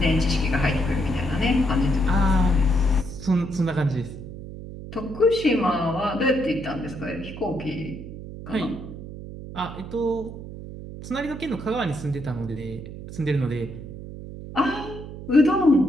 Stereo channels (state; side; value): noise; right; hum, 11 dB below the sound